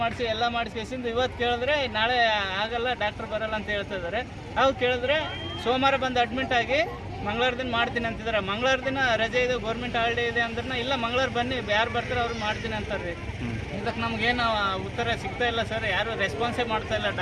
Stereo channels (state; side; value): identical; both; correlation 1.00